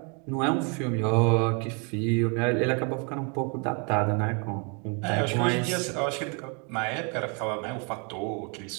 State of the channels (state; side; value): quieter; left; 35.3 dB